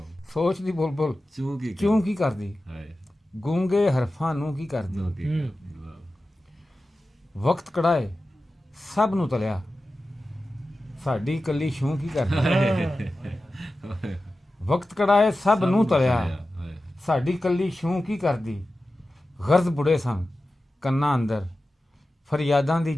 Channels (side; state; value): both; normal; correlation 0.94